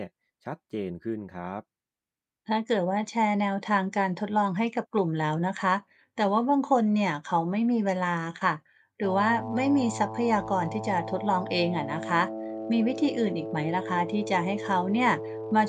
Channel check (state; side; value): identical; both; correlation 1.00